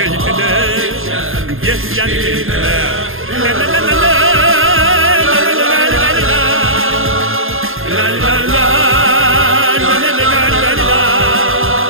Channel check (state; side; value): late; left; 0.60 ms